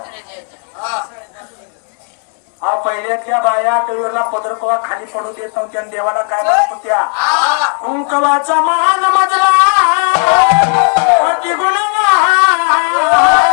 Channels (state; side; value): quieter; right; 39.4 dB